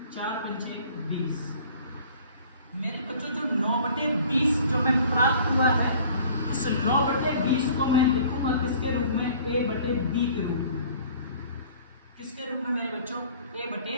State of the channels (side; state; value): both; inverted; correlation -0.50